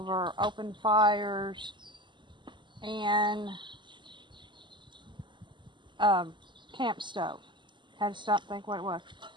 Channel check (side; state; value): left; late; 0.23 ms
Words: open fires, and camp stove. Had to stop and think what it was.